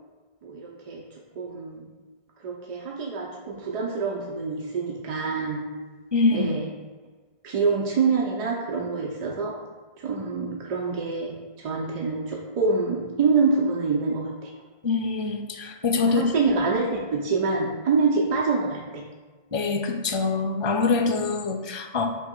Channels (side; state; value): left; late; 1.6 ms